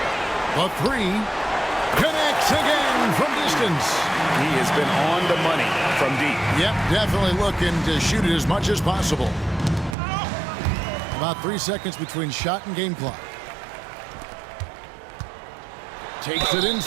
The 3 connects again from distance. He has been on the money from deep. Yep, definitely looking to shoot it as much as possible. About 3 seconds between shot and game clock. Takes it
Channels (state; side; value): drops out; left; at 10.0 s